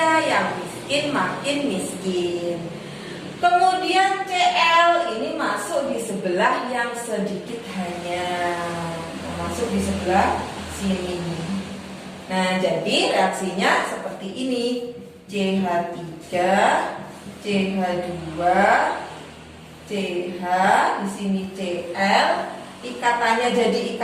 yang miskin makin miskin. Kemudian Cl ini masuk di sebelah yang sedikit hanya, masuk di sebelah sini. Nah, jadi reaksinya seperti ini. CH3, CH2, CH, di sini Cl. Ikatannya jadi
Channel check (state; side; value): identical; both; correlation 1.00